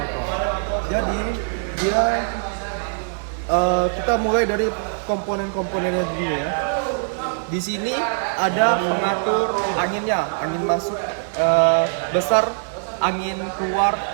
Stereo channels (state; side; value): silent; left; digital silence